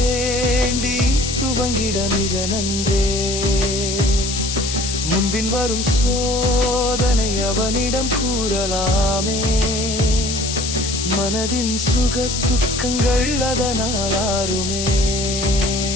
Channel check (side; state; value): left; noise; hiss, 4 dB below the sound